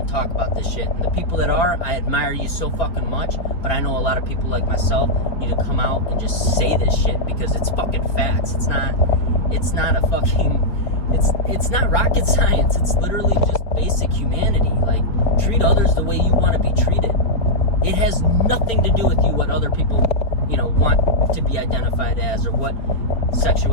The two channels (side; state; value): right; late; 4.4 ms